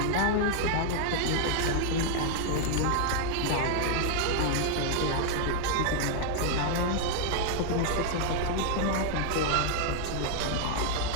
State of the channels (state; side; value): different; both; correlation 0.00